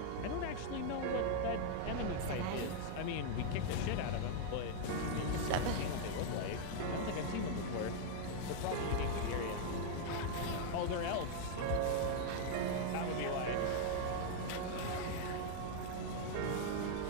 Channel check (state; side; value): different; both; correlation 0.00